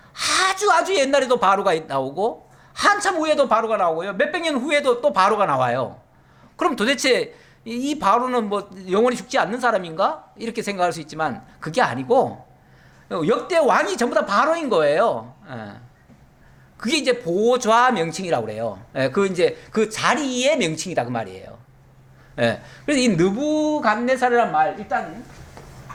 아주 옛날에도 바로가 나오고 한참 후에도 바로가 나오고요, 몇백 년 후에도 또 바로가 나와요. 그럼 도대체 이 바로는 뭐 영원히 죽지 않는 사람인가? 이렇게 생각할 수 있지만 그게 아니고 역대 왕이 전부 다 바로인 거예요. 그게 이제 보좌 명칭이라고 그래요. 그 자리의 명칭이다 그 말이에요. 그래서 이 느부갓네살이란 말, 일단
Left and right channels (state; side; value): identical; both; correlation 1.00